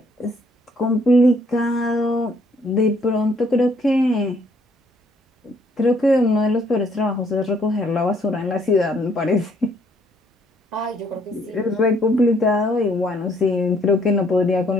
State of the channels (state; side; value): normal; both; correlation 0.66